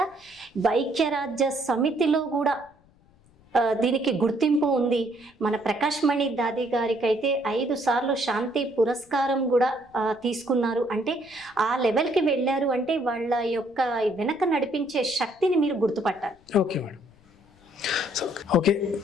ఐక్యరాజ్య సమితిలో కూడా దీనికి గుర్తింపు ఉంది. మన ప్రకాష్ మణి దాది గారికి అయితే 5 సార్లు శాంతి పురస్కారం కూడా తీసుకున్నారు. అంటే ఆ లెవెల్కి వెళ్ళారు అంటే వాళ్ళ యొక్క వెనక నడిపించే శక్తిని మీరు గుర్తుపట్టాలి. Okay madam. Okay,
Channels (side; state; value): left; noise; rumble, 30 dB below the sound